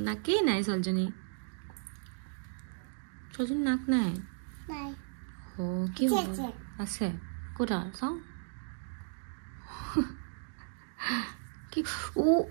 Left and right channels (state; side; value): silent; left; digital silence